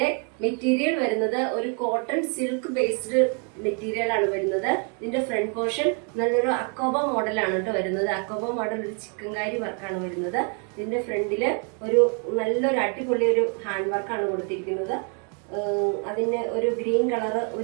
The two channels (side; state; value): left; quieter; 39.7 dB